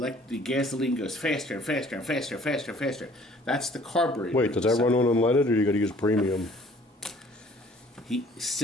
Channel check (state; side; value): normal; both; correlation 0.55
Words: the gasoline goes faster and faster and faster and faster and faster. That's the carburetor. Wait, does that run on unleaded, or you got to use premium? He